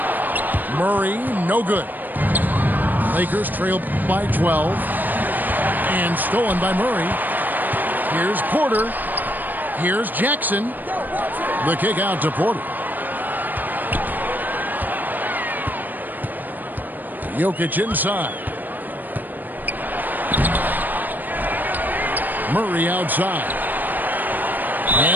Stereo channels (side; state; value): left; late; 0.088 ms